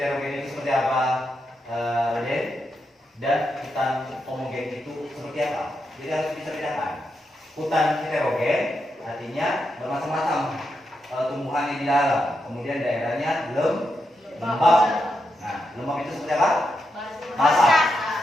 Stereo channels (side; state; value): both; normal; correlation 0.84